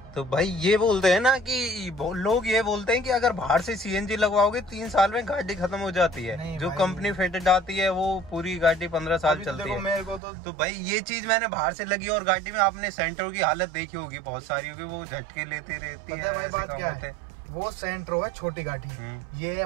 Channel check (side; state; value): left; drops out; at 10.2 s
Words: तो भाई ये बोलते हैं ना कि लोग ये बोलते हैं कि अगर बाहर से सीएनजी लगवाओगे 3 साल में गाड़ी खत्म हो जाती है। जो कंपनी फिटेड आती है वो पूरी गाड़ी 15 साल चलती है। मेरे को तो भाई ये चीज मैंने बाहर से लगी और गाड़ी में आपने सेंटर की हालत देखी होगी, बहुत सारी होगी, वो झटके लेती रहती है। ऐसे काम होते हैं। वो सेंट्रो है छोटी गाड़ी, ये